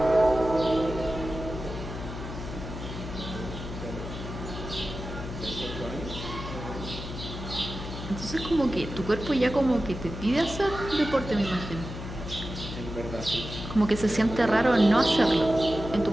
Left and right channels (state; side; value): noise; left; hum, 8 dB below the sound